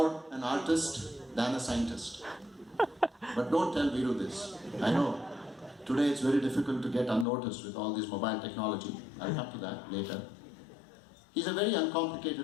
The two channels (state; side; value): drops out; right; at 7.2 s